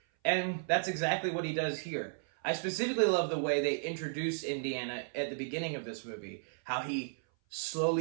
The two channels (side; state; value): left; silent; 55 dB below the other